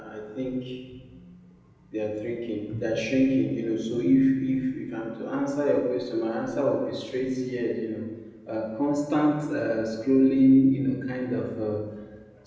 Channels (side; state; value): both; identical; correlation 1.00